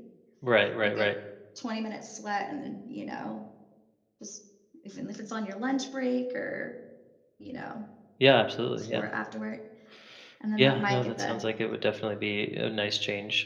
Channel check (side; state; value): both; identical; correlation 1.00